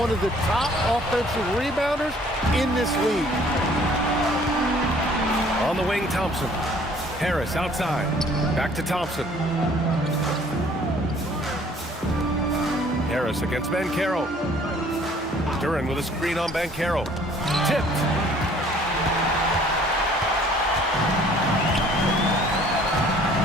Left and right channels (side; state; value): both; normal; correlation 0.56